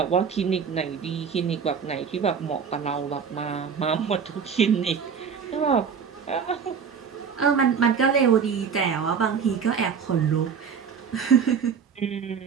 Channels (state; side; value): quieter; left; 6.6 dB